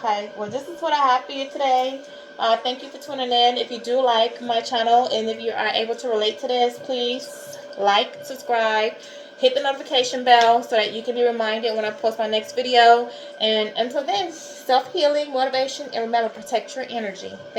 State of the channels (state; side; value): identical; both; correlation 1.00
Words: Okay, well, this is what I have for you today. Thank you for tuning in. If you do like my channel and if you are able to relate to this, please like, subscribe, hit the notification bell so that you can be reminded when I post my next video. And until then, self-healing, motivation, and remember, protect your energy.